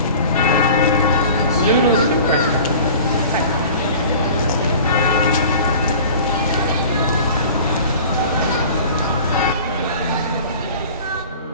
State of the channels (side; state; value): both; inverted; correlation -0.42